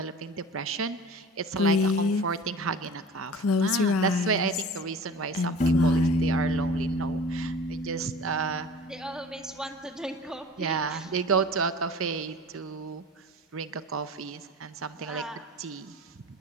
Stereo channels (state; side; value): normal; both; correlation 0.40